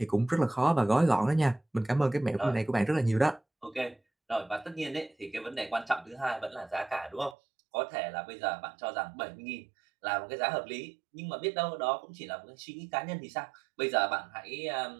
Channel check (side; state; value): left; drops out; at 7.4 s